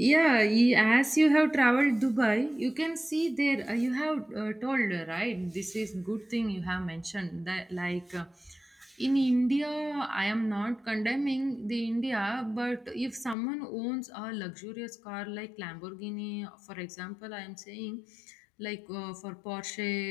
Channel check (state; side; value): drops out; right; at 13.4 s